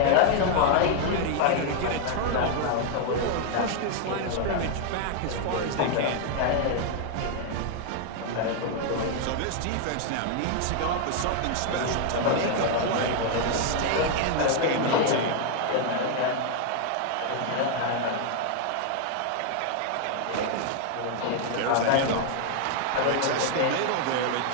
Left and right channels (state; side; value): different; both; correlation 0.00